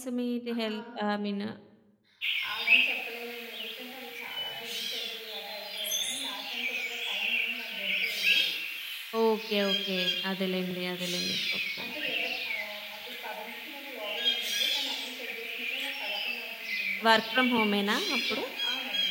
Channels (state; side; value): identical; both; correlation 1.00